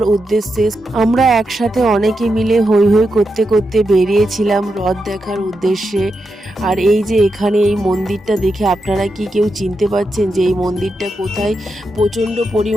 উদ্দেশ্যে। আমরা একসাথে অনেকে মিলে হৈ হৈ করতে করতে বেরিয়েছিলাম রথ দেখার উদ্দেশ্যে। আর এই যে এখানে এই মন্দিরটা দেখে আপনারা কি কেউ চিনতে পারছেন যে এই মন্দিরটা কোথায়? প্রচণ্ড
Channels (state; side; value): normal; both; correlation 0.86